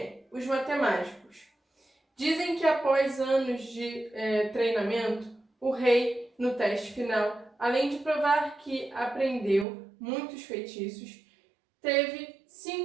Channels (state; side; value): drops out; left; at 9.7 s